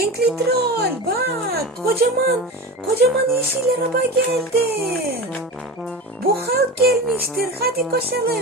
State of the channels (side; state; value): both; normal; correlation 0.27